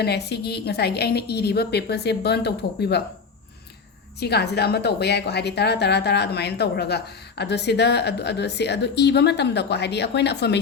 ne sigi ngasai gi aina iri ba paper se burn tau thokpi ba siga sida ama tawba yai ko haidi tara adumain tawraga adu iba matam da ko haidi akoina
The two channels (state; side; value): quieter; right; 5.2 dB